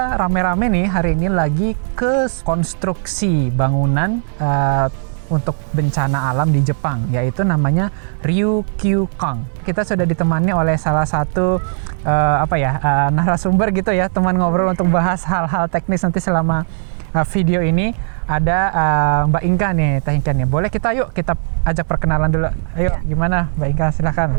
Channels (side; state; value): left; silent; 68 dB below the other